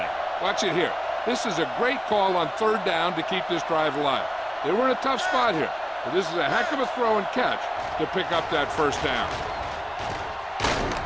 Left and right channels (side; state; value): both; identical; correlation 1.00